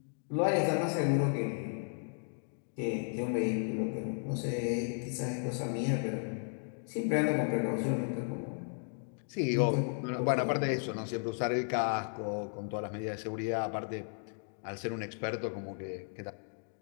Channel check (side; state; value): right; silent; 55 dB below the other